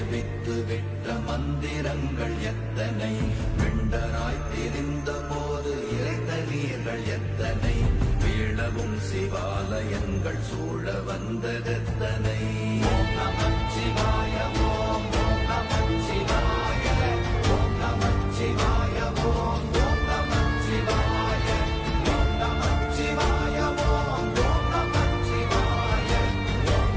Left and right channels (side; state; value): both; identical; correlation 1.00